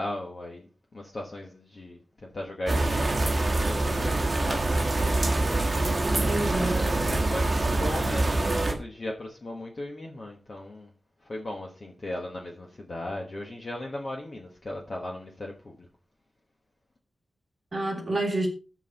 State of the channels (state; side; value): normal; both; correlation 0.95